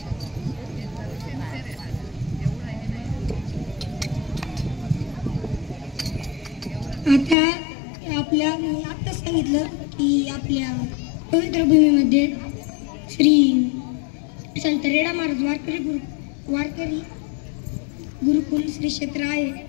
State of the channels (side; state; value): right; drops out; at 7.4 s